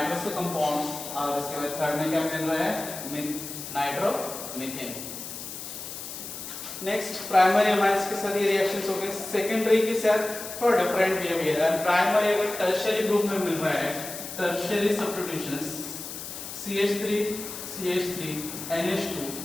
compounds और इसके बाद थर्ड में क्या मिल रहा है, नाइट्रोमीथेन। नेक्स्ट प्राइमरी अमाइंस के साथ ये रिएक्शंस हो गए, सेकेंडरी के साथ थोड़ा डिफरेंट बिहेवियर है, प्राइमरी अगर टर्शियरी ग्रुप में मिल रहा है, टर्शियरी सब्स्टिट्यूशंस CH3 NH2,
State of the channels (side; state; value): left; noise; hiss, 9 dB below the sound